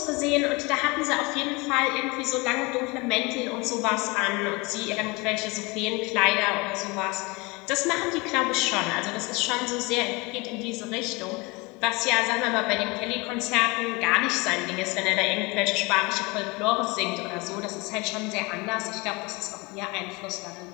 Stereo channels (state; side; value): quieter; right; 25.9 dB